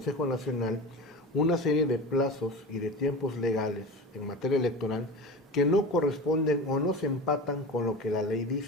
Nacional una serie de plazos y de tiempos legales en materia electoral que no corresponden o no se empatan con lo que la ley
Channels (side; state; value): both; normal; correlation 0.30